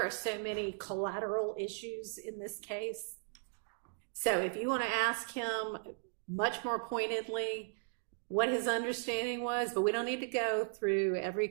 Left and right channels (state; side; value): silent; left; digital silence